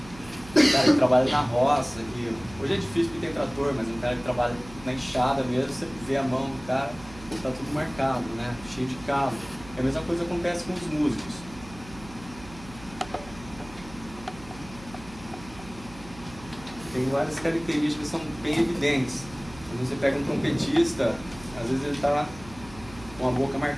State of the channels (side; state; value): right; noise; hum, 18 dB below the sound